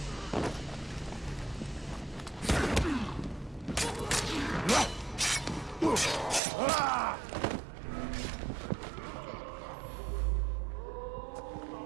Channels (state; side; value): drops out; left; at 6.4 s